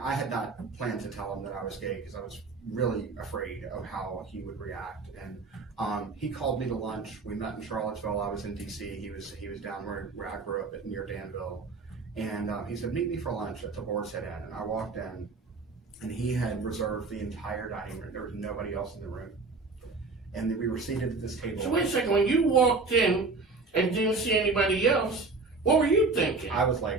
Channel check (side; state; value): left; quieter; 3.9 dB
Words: I had not planned to tell him that I was gay because I was really afraid of how he would react. And he called me to lunch. We met in Charlottesville. I was in DC. He was down where I grew up near Danville. And he said, meet me for lunch at the Boar's Head Inn. And I walked in, and he had reserved the entire dining room. There was nobody else in the room. And we were seated at this table. So wait a second, when you walked in and didn't see anybody else, what were you thinking? I was